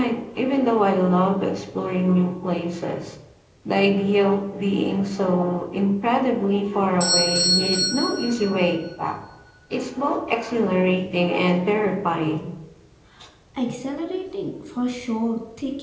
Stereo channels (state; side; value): identical; both; correlation 1.00